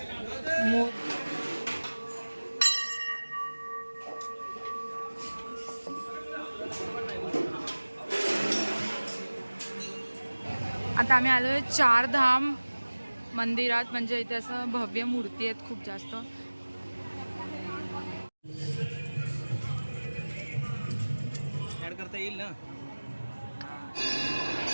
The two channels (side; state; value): both; inverted; correlation -1.00